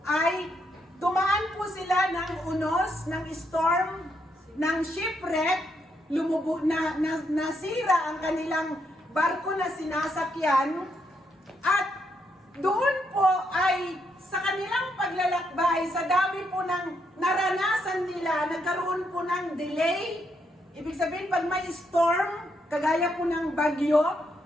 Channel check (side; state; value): both; normal; correlation 0.77